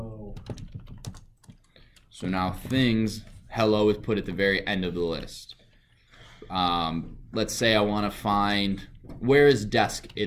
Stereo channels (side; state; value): both; identical; correlation 1.00